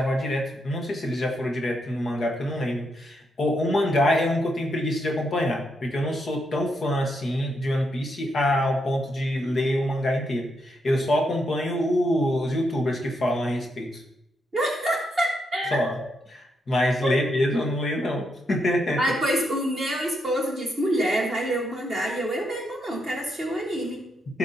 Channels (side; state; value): both; normal; correlation 0.80